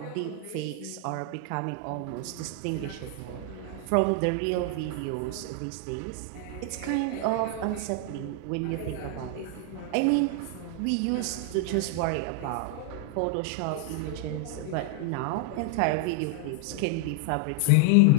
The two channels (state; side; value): different; both; correlation 0.00